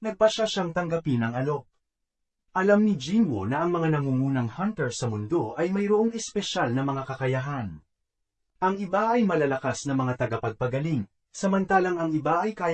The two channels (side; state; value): both; identical; correlation 1.00